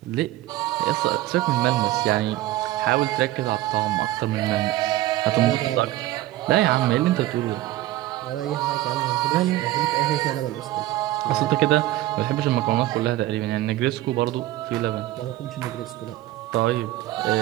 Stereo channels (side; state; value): left; quieter; 15.8 dB